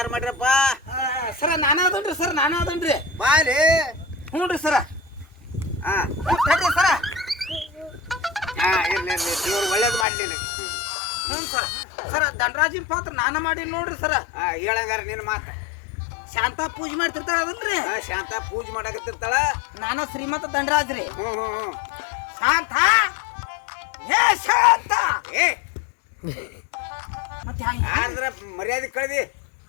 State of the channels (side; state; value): right; drops out; at 10.1 s